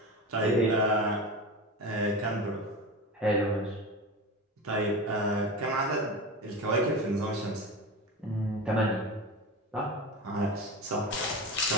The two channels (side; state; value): both; normal; correlation 0.26